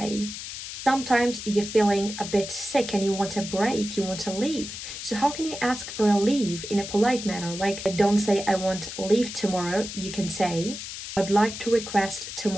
Sometimes you're feeling a bit sick and you want a break, you want to leave. So how can you ask for a leave in a polite manner? Like, don't say I want leave tomorrow. You can say, I'd like to request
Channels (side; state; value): left; noise; hiss, 9 dB below the sound